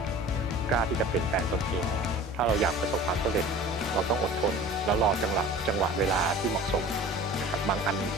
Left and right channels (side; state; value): both; normal; correlation 0.42